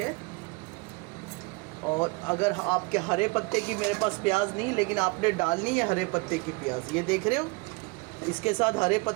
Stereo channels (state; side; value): quieter; left; 28.1 dB